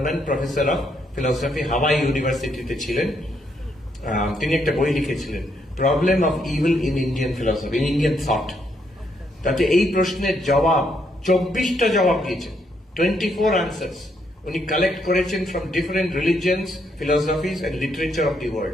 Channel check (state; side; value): normal; both; correlation 0.75